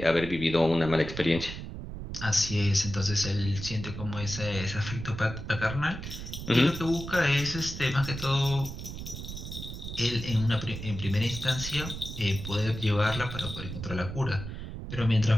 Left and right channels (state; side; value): noise; right; rumble, 8 dB below the sound